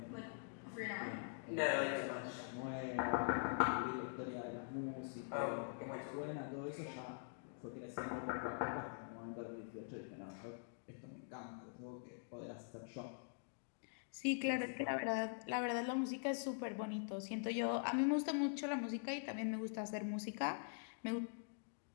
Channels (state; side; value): silent; right; digital silence